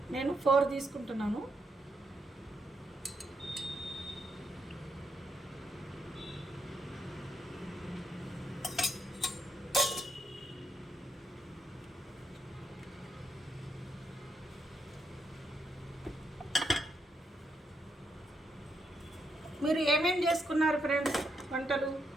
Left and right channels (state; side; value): normal; both; correlation 0.80